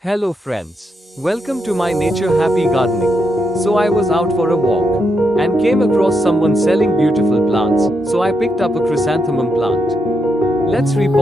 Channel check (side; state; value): both; normal; correlation 0.81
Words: Hello friends. Welcome to my nature happy gardening. So I was out for a walk and came across someone selling beautiful plants, so I picked up a chrysanthemum plant. Let's